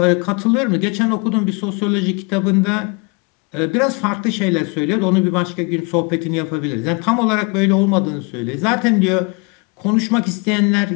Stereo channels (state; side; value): quieter; right; 31.1 dB